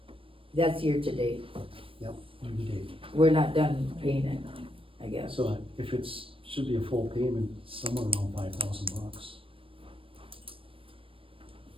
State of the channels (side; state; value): left; late; 0.26 ms